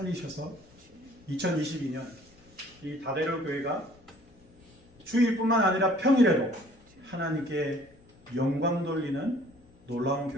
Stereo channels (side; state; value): left; noise; rumble, 27 dB below the sound